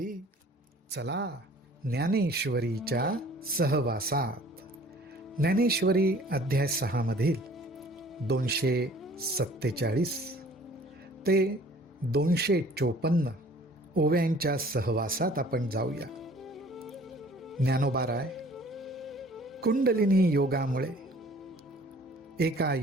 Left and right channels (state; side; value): normal; both; correlation 0.52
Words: चला ज्ञानेश्वरीच्या सहवासात. ज्ञानेश्वरी अध्याय 6 मधील 247 ते 254 ओव्यांच्या सहवासात आपण जाऊया. ज्ञानोबाराय, कुंडलिनी योगामुळे एका